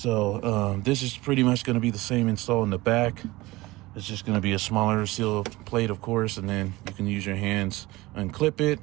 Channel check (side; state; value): left; quieter; 20.1 dB